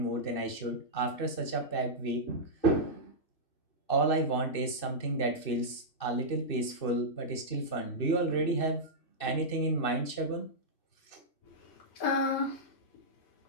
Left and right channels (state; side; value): late; right; 2.6 ms